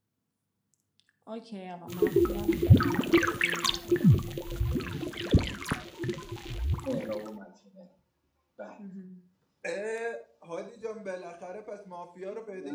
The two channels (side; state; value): both; identical; correlation 1.00